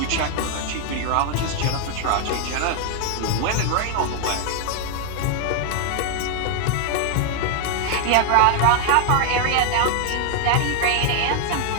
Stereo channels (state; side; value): different; both; correlation 0.00